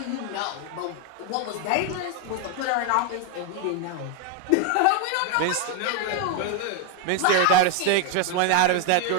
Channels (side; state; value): both; different; correlation 0.01